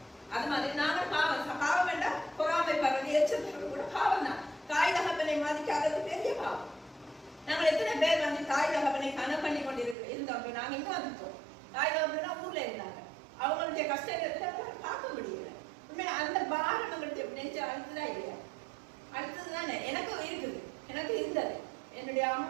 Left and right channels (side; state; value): left; drops out; at 10.0 s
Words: அது மாதிரி நாங்கள் பாவம் வேண்டாம், பொறாமை பரவது எச்சரிக்கை கூட பாவம் தான். தாய் தகப்பனை மதிக்காதது பெரிய பாவம். நாங்கள் எத்தனை பேர் தாய் தகப்பனை கனம் பண்ணி கொண்டு இருந்தோம். நாங்க இங்க வந்துட்டோம். தாய் தகப்பனா ஊர்ல இருந்தாங்க, அவங்களுடைய கஷ்டத்தை பார்க்க முடியல. உண்மையா அந்த பாரம் நம்மளுடைய நெஞ்சு அழுத்துதான் இல்லையா? அடுத்ததுதானே எனக்கும் இருக்குது, எனக்கு இருந்தது. என்னுடைய